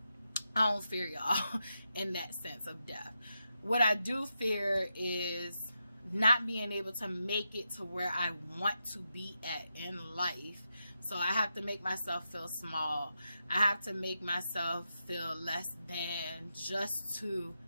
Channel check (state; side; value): inverted; both; correlation -0.87